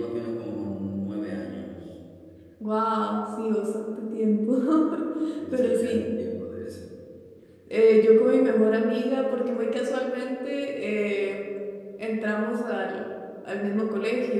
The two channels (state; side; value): identical; both; correlation 1.00